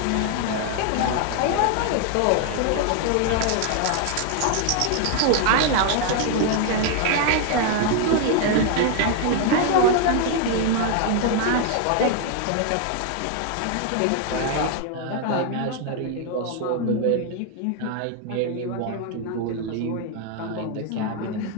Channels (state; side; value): different; both; correlation 0.00